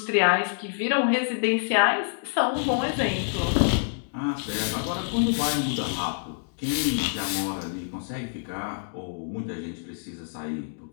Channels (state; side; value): silent; right; digital silence